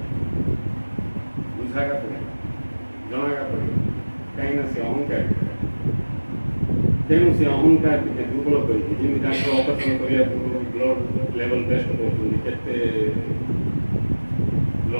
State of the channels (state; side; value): inverted; both; correlation -1.00